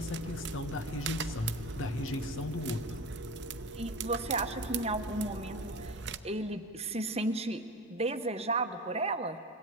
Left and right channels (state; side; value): normal; both; correlation 0.31